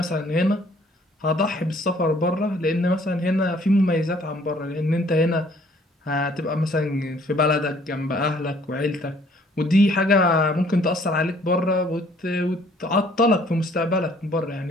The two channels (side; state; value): both; normal; correlation 0.60